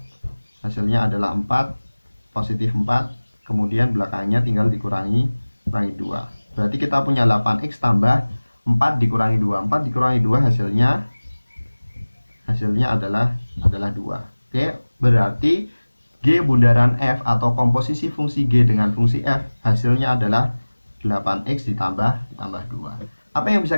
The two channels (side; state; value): both; inverted; correlation -1.00